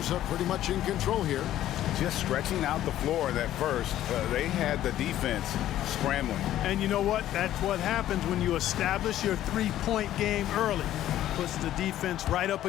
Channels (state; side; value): quieter; right; 12.8 dB